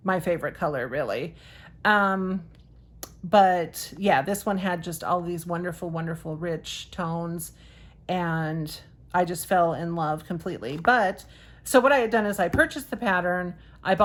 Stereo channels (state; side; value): identical; both; correlation 1.00